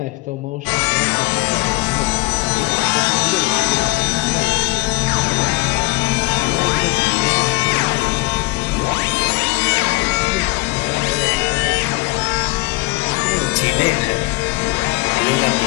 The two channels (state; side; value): quieter; right; 23.9 dB